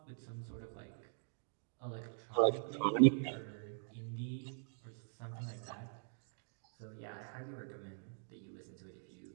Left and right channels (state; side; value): silent; left; digital silence